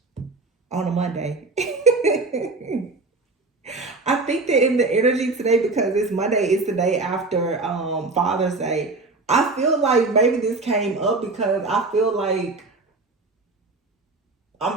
on a Monday. I think that in the energy today, because it's Monday, it's the day after Father's Day. I feel like maybe this came up because I feel like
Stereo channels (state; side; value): quieter; left; 3.5 dB